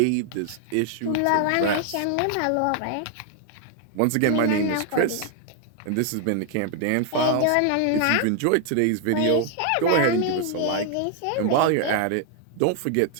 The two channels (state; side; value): different; both; correlation 0.00